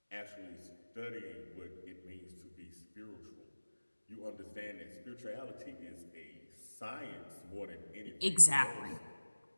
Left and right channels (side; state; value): both; inverted; correlation -1.00